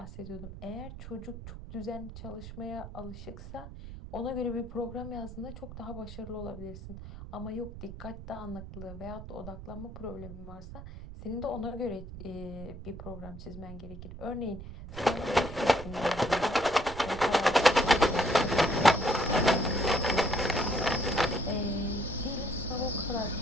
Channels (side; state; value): right; noise; rumble, 12 dB below the sound